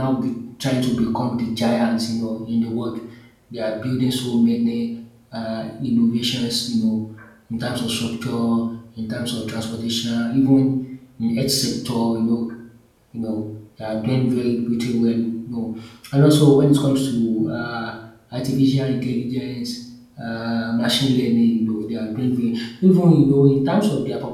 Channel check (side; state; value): both; identical; correlation 1.00